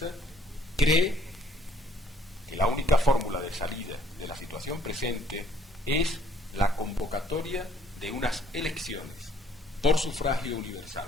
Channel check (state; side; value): normal; both; correlation 0.62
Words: cree que la única fórmula de salida de la situación presente es la convocatoria de unas elecciones por sufragio universal,